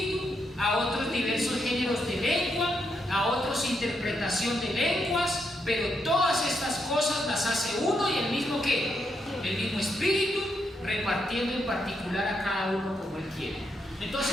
a otros diversos géneros de lengua, a otros interpretación de lenguas, pero todas estas cosas las hace uno y el mismo ¿qué? El mismo Espíritu, repartiendo en particular a cada uno como Él quiere.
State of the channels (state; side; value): normal; both; correlation 0.80